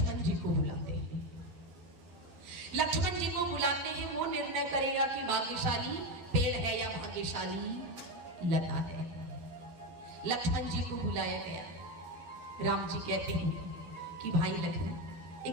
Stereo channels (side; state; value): left; late; 12 ms